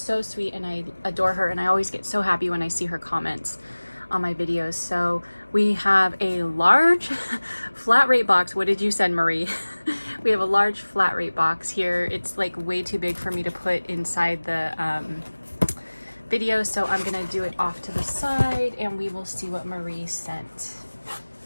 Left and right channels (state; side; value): inverted; both; correlation -1.00